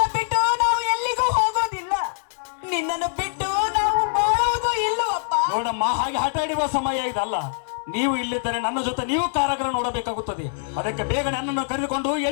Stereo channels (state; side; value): silent; right; digital silence